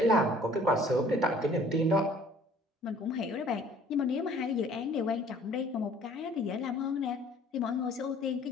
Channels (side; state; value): both; normal; correlation 0.54